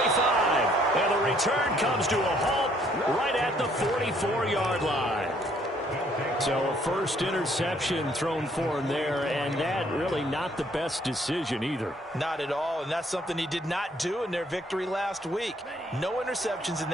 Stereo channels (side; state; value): both; normal; correlation 0.64